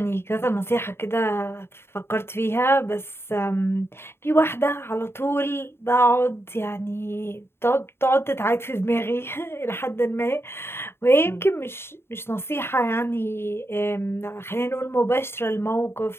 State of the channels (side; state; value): right; late; 0.12 ms